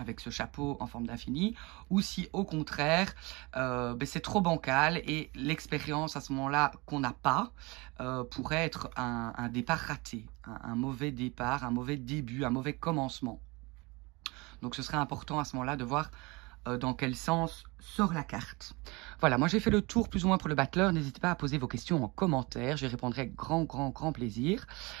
ce chapeau en forme d'infini, ou si au contraire ben c'est trop bancal et l'expérience à ce moment-là qu'on n'a pas pourrait être un départ raté, un mauvais départ, un mauvais début, un mauvais commencement. Donc ce serait important à ce moment-là de voir dans quel sens sort la carte. Voilà, moi j'ai fait le tour plus ou moins pour le battleur. N'hésitez pas à poser vos questions en commentaire. J'y répondrai avec grand plaisir.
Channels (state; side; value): quieter; left; 25.4 dB